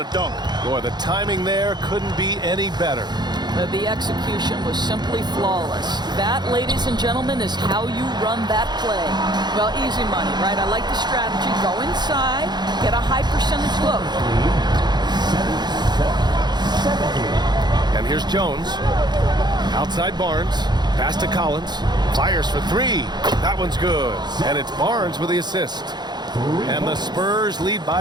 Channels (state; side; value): late; left; 0.21 ms